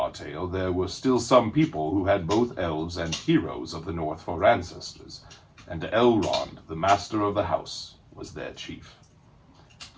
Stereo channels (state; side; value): identical; both; correlation 1.00